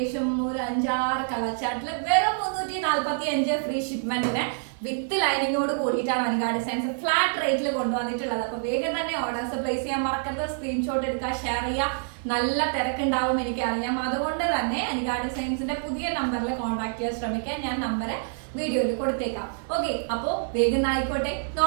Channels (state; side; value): silent; left; 57 dB below the other